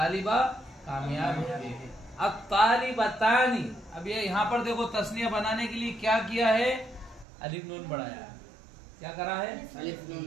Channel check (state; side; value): drops out; left; at 7.2 s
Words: कामयाब है। अब तालिबतानी, अब ये यहाँ पर देखो तस्निया बनाने के लिए क्या किया है? अलिफ नून बढ़ाया है। क्या करा है?